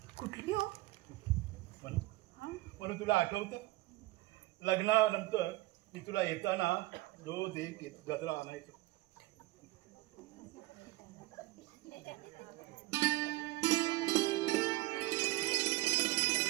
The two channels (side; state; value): left; quieter; 19.3 dB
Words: कुठली हो? म्हणून तुला आठवतं लग्नानंतर मी तुला येताना रोज एक गजरा आणायचो.